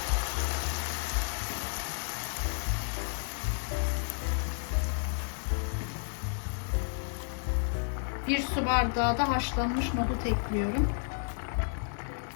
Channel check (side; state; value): right; silent; digital silence